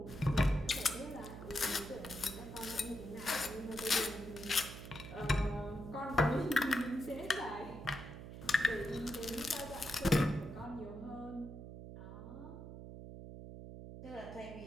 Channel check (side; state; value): right; noise; hum, 11 dB below the sound